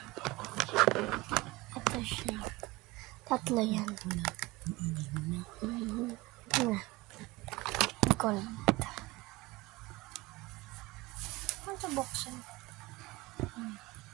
Ito siya. Tatlo yan. Gold. Ano sa boxen?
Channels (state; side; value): quieter; left; 21.1 dB